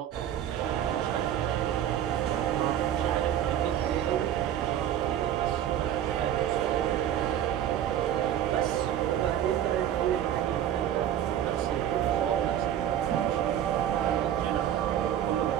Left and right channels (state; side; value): quieter; left; 10.7 dB